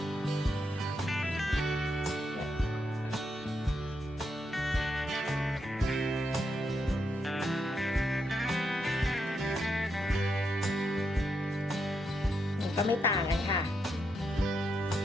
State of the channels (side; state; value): both; normal; correlation 0.81